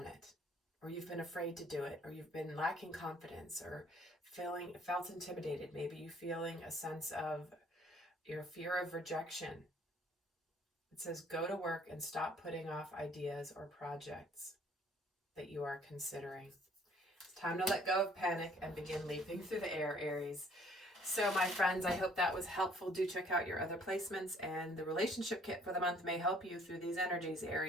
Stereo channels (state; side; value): normal; both; correlation 0.60